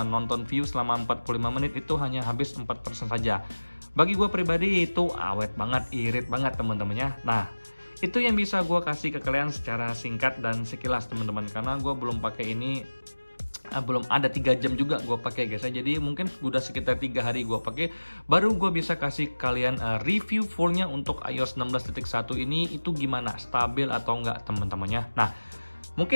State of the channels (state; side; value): inverted; both; correlation -1.00